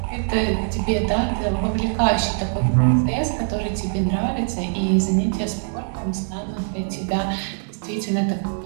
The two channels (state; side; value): silent; left; 64 dB below the other